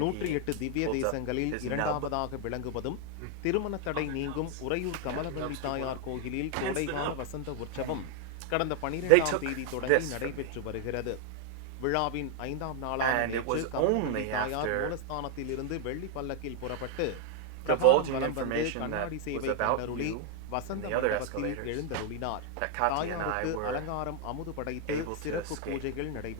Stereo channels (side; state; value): both; different; correlation 0.00